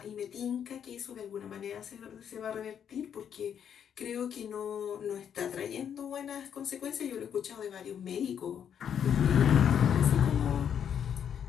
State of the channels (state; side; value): quieter; right; 8.5 dB